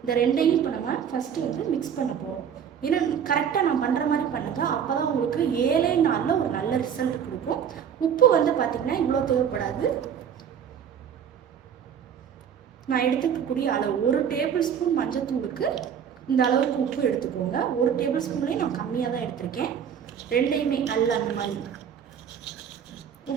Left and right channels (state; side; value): quieter; left; 8.1 dB